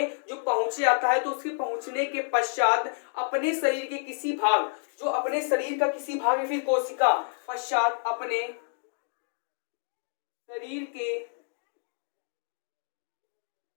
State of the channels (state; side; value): silent; right; 59 dB below the other